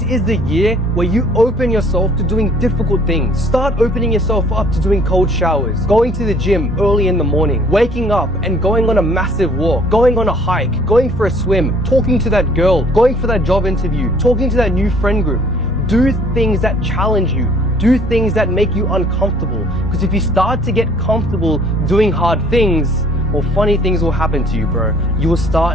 is the year where you open yourself to doing difficult things. Start opening yourself up to doing cold showers, going to the gym early in the morning, waking up and going on a massive walk, going on a hike, going for a swim, talking to that girl, going for that job interview, talking to that new friend group. Do things that challenge you. Do things that make you uncomfortable. Because if you start to get comfortable doing hard things, well, funny things will happen to you, bro. You will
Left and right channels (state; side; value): normal; both; correlation 0.57